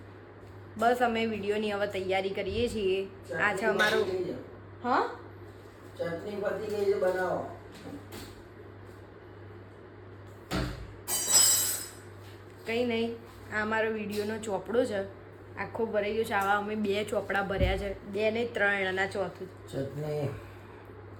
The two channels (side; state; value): both; identical; correlation 1.00